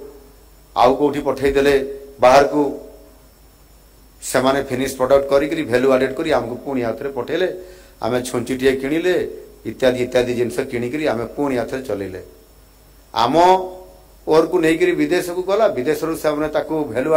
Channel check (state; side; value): identical; both; correlation 1.00